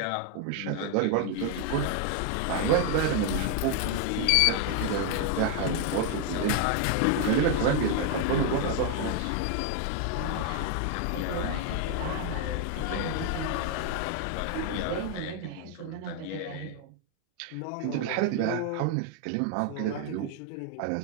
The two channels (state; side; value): different; both; correlation 0.01